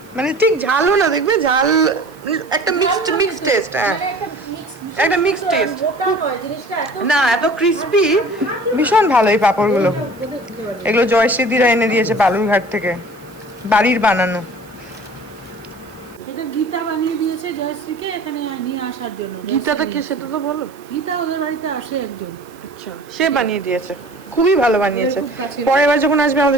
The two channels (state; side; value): noise; right; hiss, 27 dB below the sound